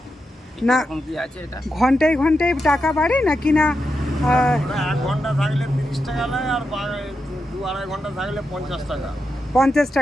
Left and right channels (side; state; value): both; normal; correlation 0.87